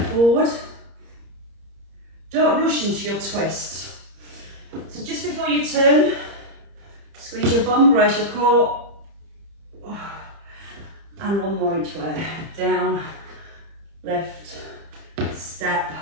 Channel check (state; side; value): late; left; 30 ms